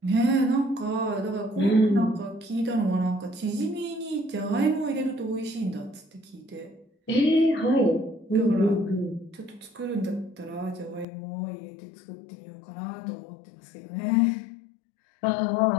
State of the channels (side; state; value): right; drops out; at 11.1 s